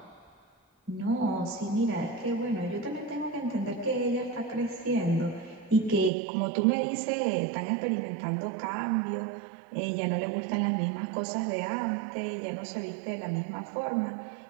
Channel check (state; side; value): drops out; left; at 6.1 s